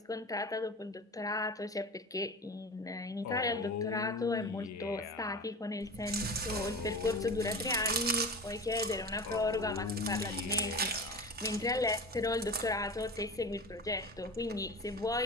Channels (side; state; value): both; normal; correlation 0.31